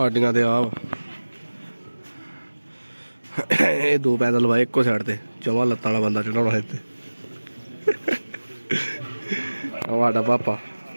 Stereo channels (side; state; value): both; inverted; correlation -1.00